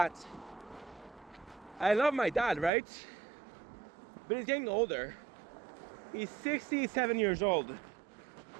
I love my dad, right? But he's getting older. He's 67 years old.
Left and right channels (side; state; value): left; drops out; at 2.7 s